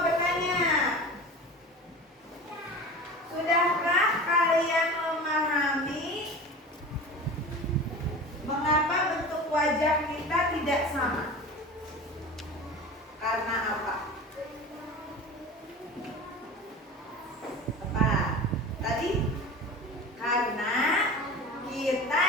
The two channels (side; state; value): both; normal; correlation 0.34